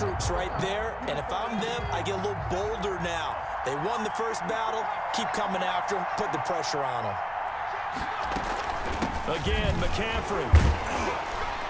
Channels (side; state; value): both; identical; correlation 1.00